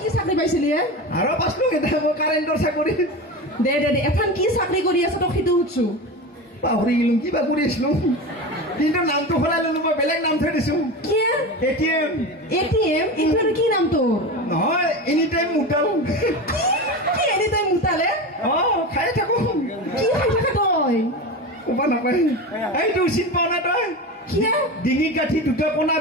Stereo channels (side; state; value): both; normal; correlation 0.25